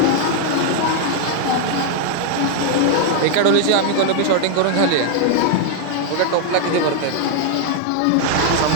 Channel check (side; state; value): both; different; correlation 0.00